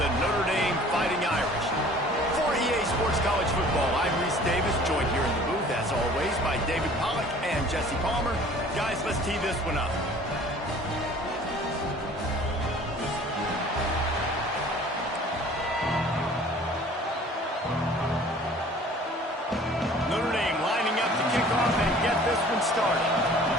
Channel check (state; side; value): normal; both; correlation 0.49